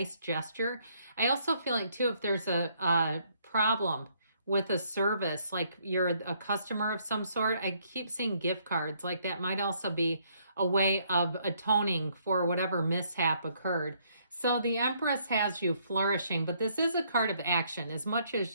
gesture. I also feel like, too, if there's a problem with a service, like you're a customer of some sort, I keep seeing gift cards. Like that might also be a way of atoning for whatever mishap occurred. So the Empress has you flourishing, but this is a card of action. As much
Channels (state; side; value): inverted; both; correlation -0.69